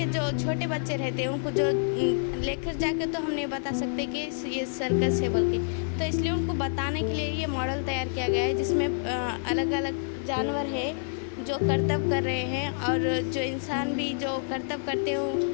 जो छोटे बच्चे रहते हैं उनको जो लेकर जाके तो हम नहीं बता सकते कि ये सर्कस है बोल के, तो इसलिए उनको बताने के लिए ये मॉडल तैयार किया गया है, जिसमें अलग अलग जानवर है जो करतब कर रहे हैं और जो इंसान भी जो करतब करते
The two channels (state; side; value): silent; right; 59 dB below the other